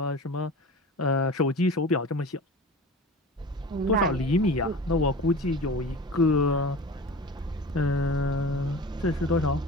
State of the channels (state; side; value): normal; both; correlation 0.35